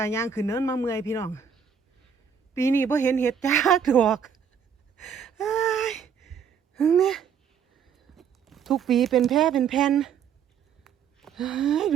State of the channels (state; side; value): quieter; left; 7.2 dB